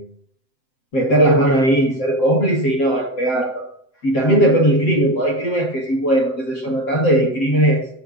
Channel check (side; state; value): right; late; 7.8 ms